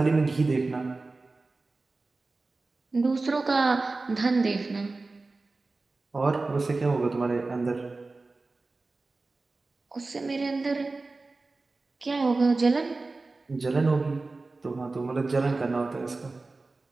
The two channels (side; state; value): left; quieter; 3.5 dB